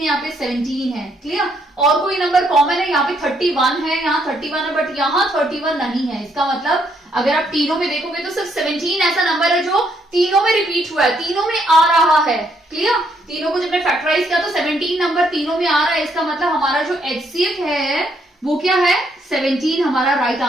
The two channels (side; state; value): both; normal; correlation 0.72